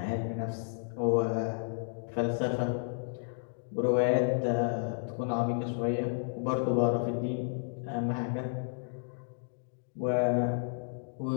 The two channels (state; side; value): silent; right; digital silence